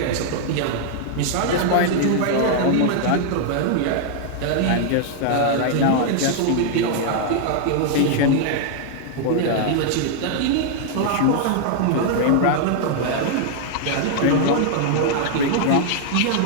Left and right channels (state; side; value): different; both; correlation -0.01